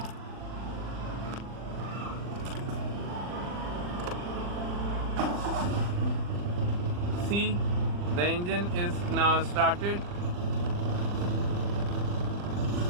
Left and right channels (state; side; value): late; left; 40 ms